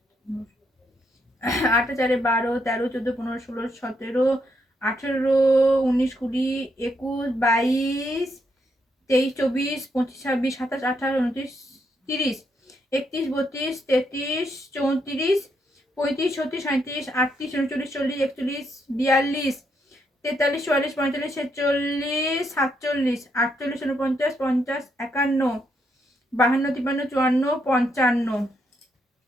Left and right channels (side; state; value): both; normal; correlation 0.77